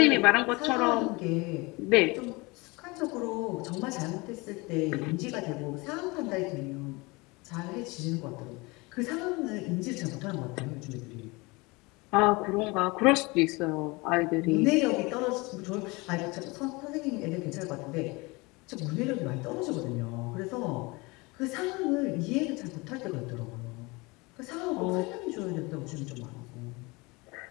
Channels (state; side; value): quieter; right; 25.1 dB